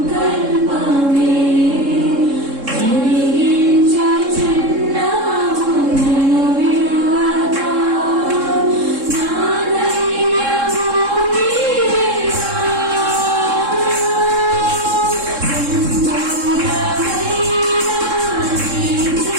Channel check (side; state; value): left; late; 3.7 ms